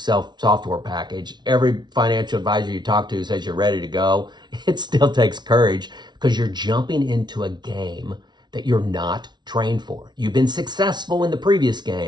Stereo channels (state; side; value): late; left; 0.20 ms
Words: package. Every financial advisor you talk to says you're ready to go. It still takes courage because you're jumping into a game that you're not trained for. You've been successful in the previous